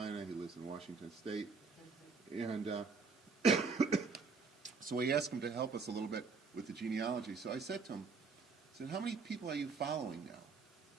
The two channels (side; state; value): left; quieter; 4.6 dB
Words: he lives in Washington State, and so we asked him to help us a little bit with the genealogy. So I said to him, how many people are you following now?